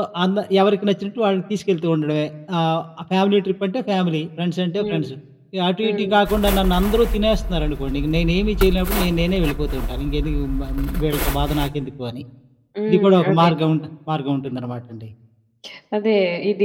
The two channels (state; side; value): identical; both; correlation 1.00